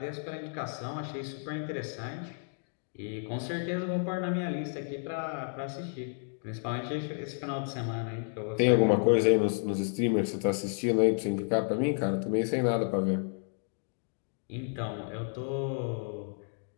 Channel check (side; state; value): right; silent; 57 dB below the other